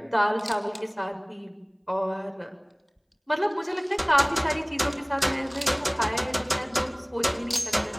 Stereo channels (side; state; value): both; identical; correlation 1.00